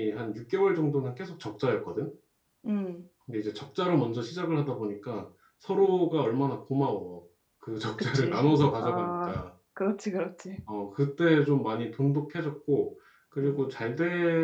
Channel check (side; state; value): both; identical; correlation 1.00